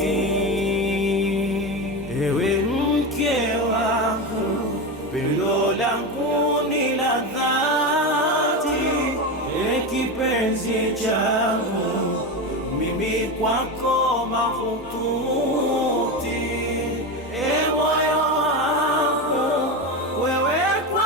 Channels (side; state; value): both; normal; correlation 0.18